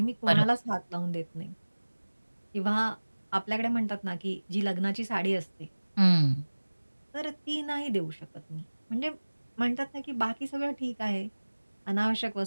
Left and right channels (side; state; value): both; inverted; correlation -1.00